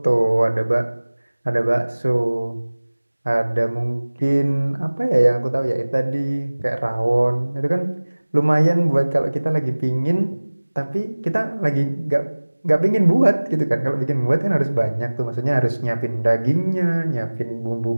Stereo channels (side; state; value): both; inverted; correlation -1.00